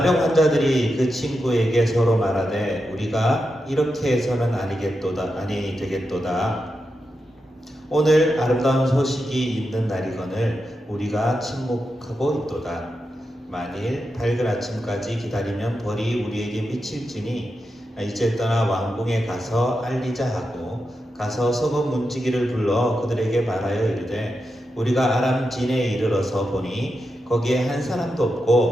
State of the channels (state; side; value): normal; both; correlation 0.88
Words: 환자들이 그 친구에게 서로 말하되 우리가 이렇게 해서는 아니 되겠도다. 오늘 아름다운 소식이 있는 날이거늘 우리가 침묵하고 있도다. 만일 밝은 아침까지 기다리면 벌이 우리에게 미칠지니 이제 떠나 왕궁에 가서 알리자 하고 가서 서고 문지기를 불러 그들에게 말하여 이르되 우리가 아람 진에 이르러서 보니 거기에 한 사람도